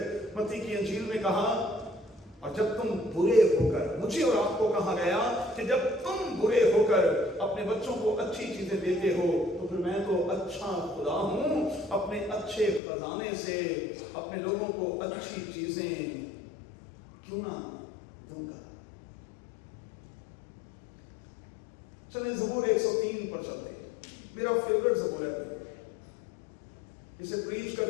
मत्ती की इंजील में कहा, और जब तुम बुरे होकर, मुझे और आपको कहा गया कि जब तुम बुरे होकर अपने बच्चों को अच्छी चीजें देते हो, तो फिर मैं तो अच्छा खुदा हूं, अपने अच्छे खजाने से अपने लोगों को अच्छी चीजें क्यों ना दूंगा। चलिए ज़बूर 103 पर चलते हैं। मेरा फेवरेट ज़बूर है। इसे प्रीच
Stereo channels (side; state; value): right; drops out; at 12.8 s